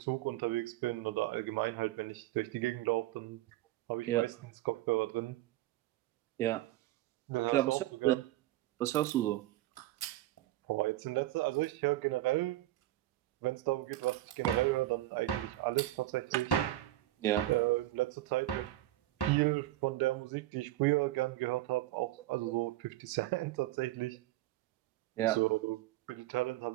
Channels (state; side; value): quieter; left; 15.8 dB